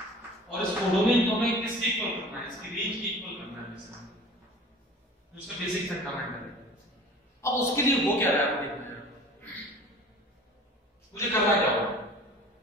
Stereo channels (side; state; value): both; normal; correlation 0.43